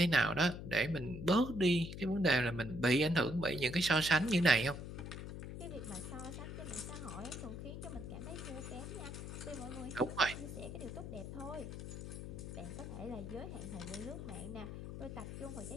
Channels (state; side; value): noise; left; hum, 8 dB below the sound